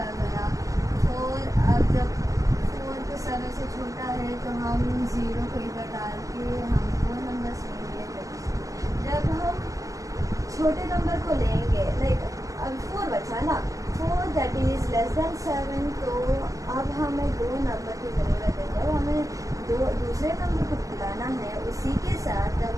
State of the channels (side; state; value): left; late; 0.16 ms